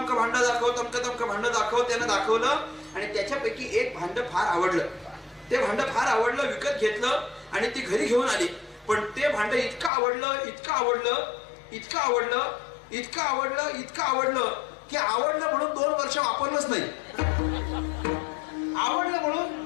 भांड दाखव, तमक तमक भांड दाखव. त्यानं दाखवलं आणि त्याच्यापैकी एक भांड फार आवडलं. ते भांड फार आवडलं, विकत घेतलं आणि ती घरी घेऊन आली. पण ते भांड इतकं आवडलं, इतकं आवडलं, इतकं आवडलं, इतकं आवडलं, इतकं आवडलं की आवडलं म्हणून 2 वर्ष वापरलंच नाही. आवडलं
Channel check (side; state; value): right; drops out; at 9.9 s